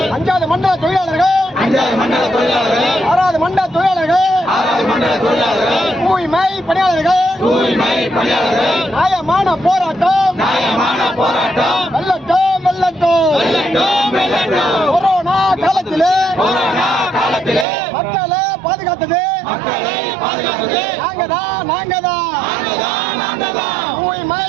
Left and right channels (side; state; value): left; drops out; at 17.7 s